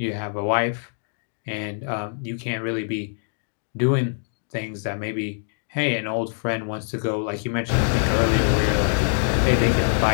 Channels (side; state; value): right; silent; digital silence